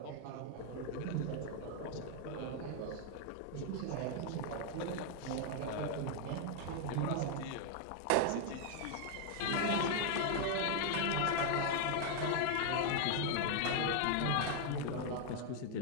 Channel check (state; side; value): different; both; correlation 0.00